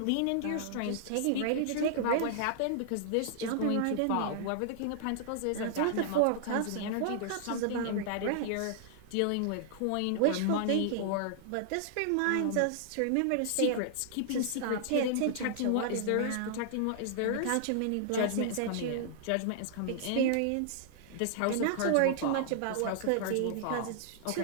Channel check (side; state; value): both; different; correlation -0.01